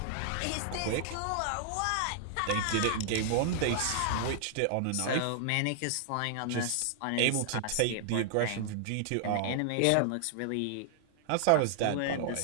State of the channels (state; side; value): different; both; correlation -0.01